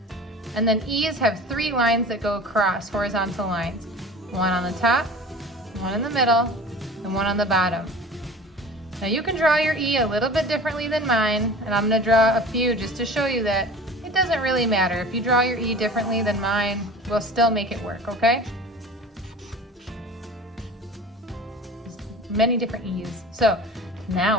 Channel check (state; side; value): normal; both; correlation 0.39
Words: And then E's have 3 lines that go across, horizontal lines. One on the top, one in the middle, and one on the bottom. Now you can draw your E a little bit differently than mine, and I'm gonna draw a few just to show you that it doesn't really matter. If you draw your E differently than mine, we'll still make it work, okay? Many different E's. So